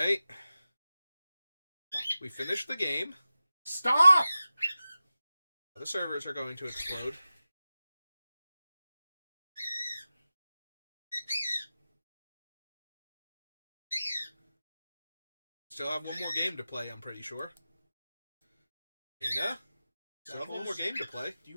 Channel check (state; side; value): inverted; both; correlation -0.95